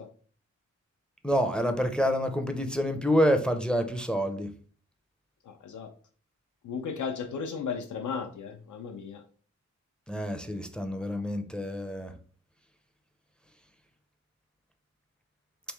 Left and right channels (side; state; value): both; normal; correlation 0.74